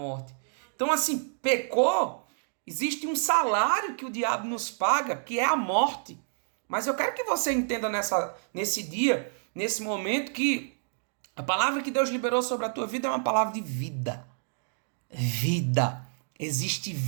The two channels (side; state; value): left; silent; digital silence